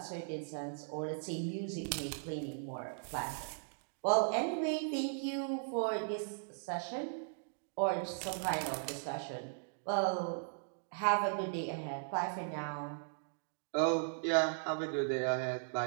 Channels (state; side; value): silent; left; digital silence